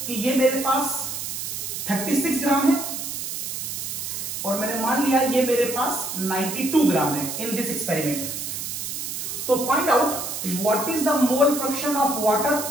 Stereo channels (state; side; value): noise; right; hiss, 5 dB below the sound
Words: कि ये मेरे पास 36 ग्राम है और मैंने मान लिया ये मेरे पास 92 ग्राम है in this experiment. So find out what is the mole fraction of water